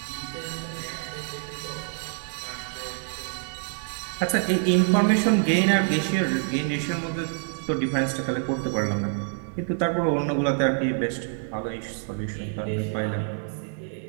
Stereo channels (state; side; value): silent; left; digital silence